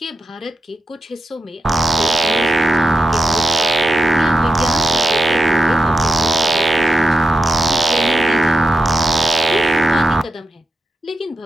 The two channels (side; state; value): both; normal; correlation 0.88